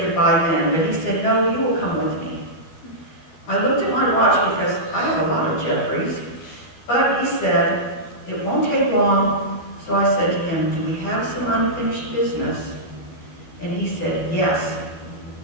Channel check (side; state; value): right; late; 13 ms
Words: goodbye then, but he said, "No, you will come with me." I looked at my watch because I have a lot of Jeffreys, but he said, "It won't take long." So I said to him, "Do we have some unfinished business?" And he said, "Yes."